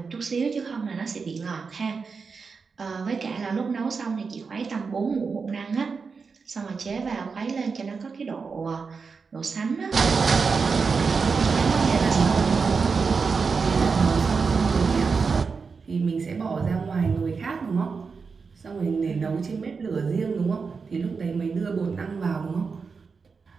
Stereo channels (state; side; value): quieter; left; 5.1 dB